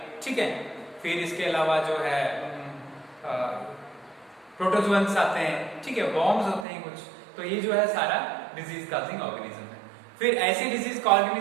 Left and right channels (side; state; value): left; drops out; at 6.7 s